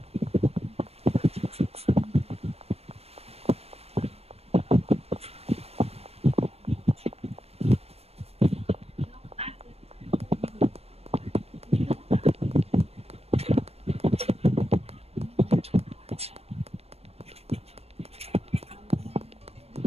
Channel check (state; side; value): late; left; 0.29 ms